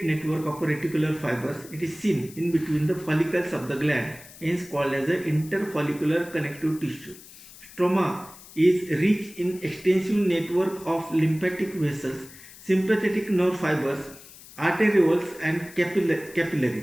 network of reticular fibers. It is seen in between the follicles of the gland, hence called as the interfollicular connective tissue. Stroma is rich in extensive network of lymphatic vessels, sympathetic nerve fibers, arterioles and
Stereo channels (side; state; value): left; noise; hiss, 19 dB below the sound